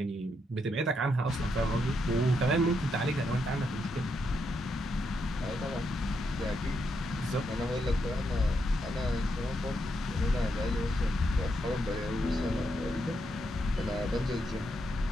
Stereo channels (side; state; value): both; normal; correlation 0.80